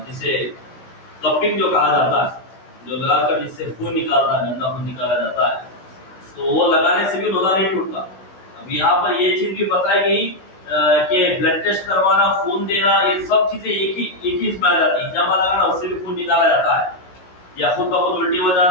جسے کپنگ جو کہا جاتا ہے, جو لگا کر جس سے خون نکالتا ہے, گندا خون نکالا جاتا ہے, تو وہ لگانے سے بھی روزہ نہیں ٹوٹتا. اب یہاں پر یہ چیز بھی بتائی گئی کہ بلڈ ٹیسٹ کروانا, خون دینا, یہ سب چیزیں ایک ہی اس میں آ جاتی ہیں. ہجامہ لگانا, اس سے بھی خون نکالا جاتا ہے. یا خود بخود الٹی ہو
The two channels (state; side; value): late; right; 16 ms